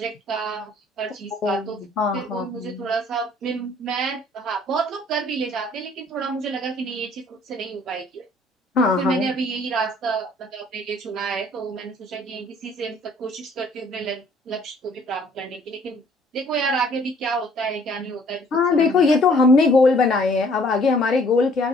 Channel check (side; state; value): both; normal; correlation 0.58